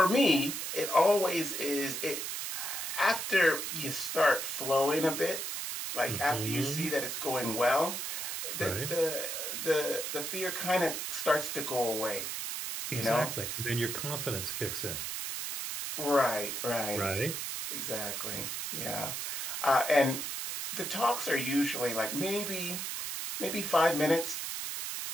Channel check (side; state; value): right; noise; hiss, 4 dB below the sound